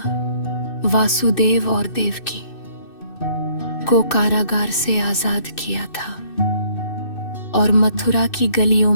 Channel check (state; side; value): late; right; 2.6 ms